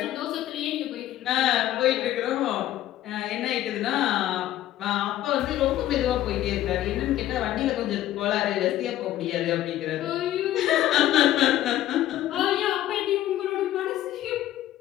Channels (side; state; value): right; quieter; 13.4 dB